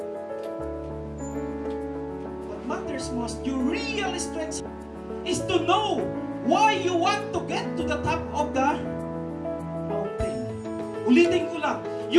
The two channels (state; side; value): identical; both; correlation 1.00